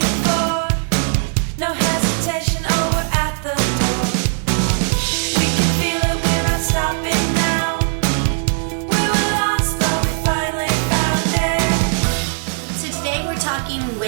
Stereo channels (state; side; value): silent; left; 67 dB below the other